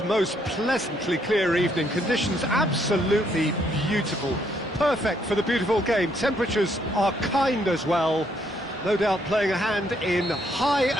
most pleasantly clear evening. Conditions absolutely beautiful. Perfect for the beautiful game. Temperatures are kind as well. No doubt playing a hand in high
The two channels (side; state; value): both; normal; correlation 0.71